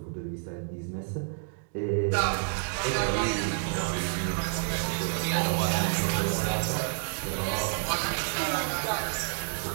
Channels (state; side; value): silent; left; digital silence